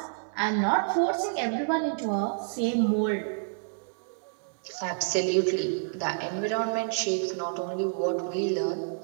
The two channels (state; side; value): silent; left; digital silence